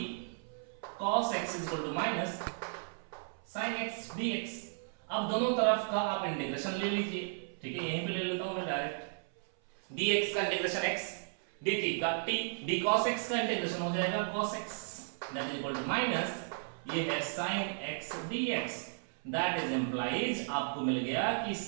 cos x is equal to minus sin x dx। अब दोनों तरफ का आप इंटीग्रेशन ले लीजिए, ठीक है, यहीं पे ले लेता हूं मैं डायरेक्ट। dx का इंटीग्रेशन x, dt का t, d cos x का इंटीग्रेशन हो जाएगा cos x that is equal to minus ये है sin x dx। That is implies आपको मिल गया कि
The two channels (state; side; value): silent; left; 55 dB below the other